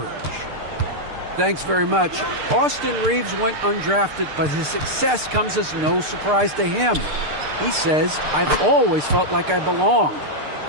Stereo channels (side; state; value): left; late; 6.7 ms